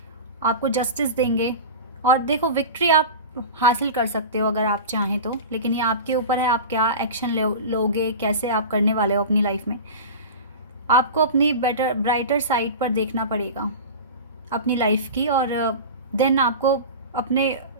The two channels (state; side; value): inverted; both; correlation -0.30